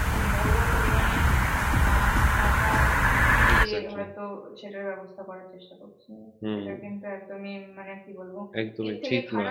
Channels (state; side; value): identical; both; correlation 1.00